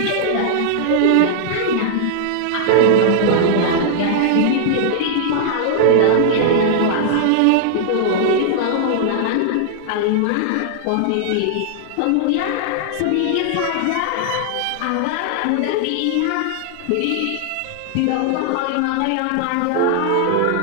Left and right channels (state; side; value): different; both; correlation -0.01